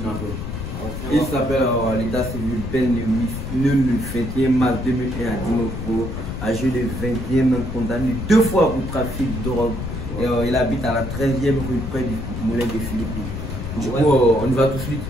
Il s'appelle l'état civil Ben Lewis, né le 21 mars 2001 à Dinopro, âgé de 21 ans, condamné 2 fois pour trafic de drogue. Et, il habite à la 13e rue près du moulin des Philippines. Du coup, on y va tout de suite?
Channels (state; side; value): noise; left; rumble, 6 dB below the sound